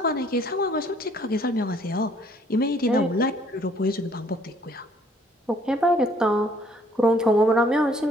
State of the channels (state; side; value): normal; both; correlation 0.62